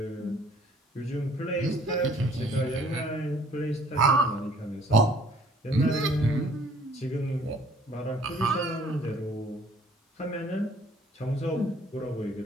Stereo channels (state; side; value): normal; both; correlation 0.57